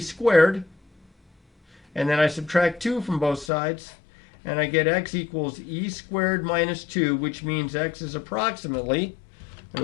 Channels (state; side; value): drops out; right; at 3.5 s